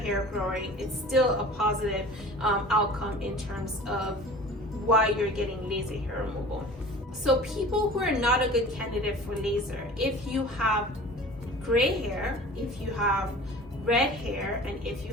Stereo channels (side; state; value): both; normal; correlation 0.42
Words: growing, it's still a positive outcome in terms of why you're getting laser hair removal. So people who are not a good candidate for laser, if you have gray hair, if you have red hair, and if you